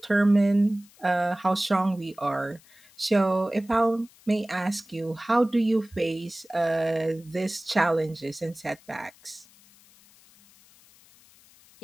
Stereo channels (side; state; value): left; noise; hiss, 27 dB below the sound